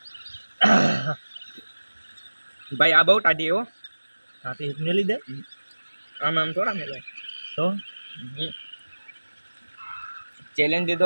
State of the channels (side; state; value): both; inverted; correlation -1.00